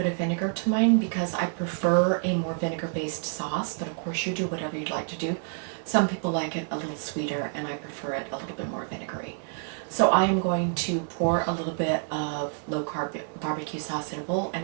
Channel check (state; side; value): silent; left; 59 dB below the other